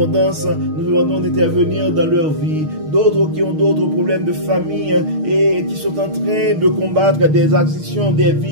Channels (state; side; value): late; left; 6.5 ms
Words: nous demandons d'intervenir dans leur vie. D'autres qui ont d'autres problèmes de famille et qui sont en train de combattre des addictions, des